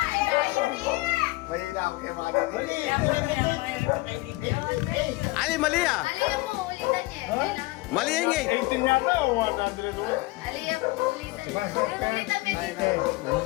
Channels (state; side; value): quieter; right; 21.5 dB